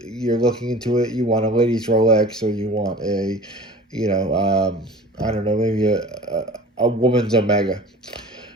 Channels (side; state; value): both; normal; correlation 0.41